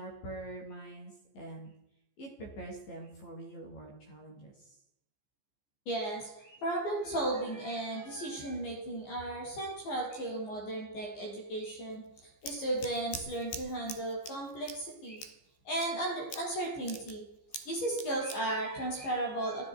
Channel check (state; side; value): late; right; 14 ms